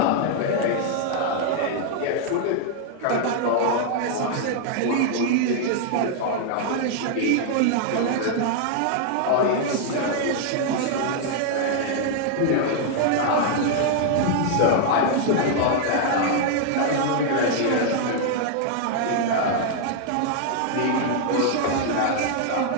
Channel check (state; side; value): different; both; correlation 0.00